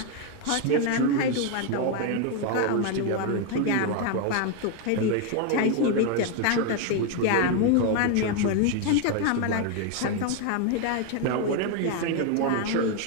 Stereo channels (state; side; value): different; both; correlation 0.01